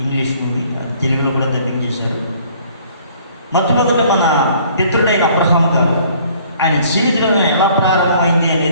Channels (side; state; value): both; inverted; correlation -0.57